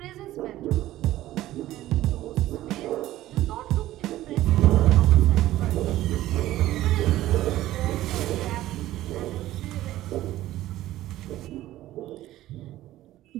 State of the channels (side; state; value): left; quieter; 14.9 dB